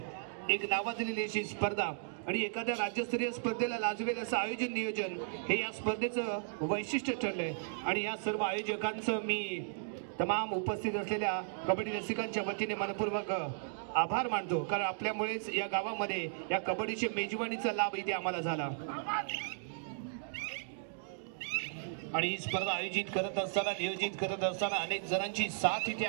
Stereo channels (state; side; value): silent; left; digital silence